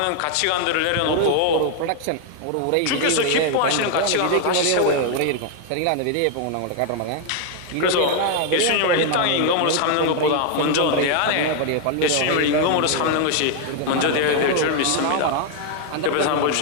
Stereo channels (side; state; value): both; different; correlation 0.00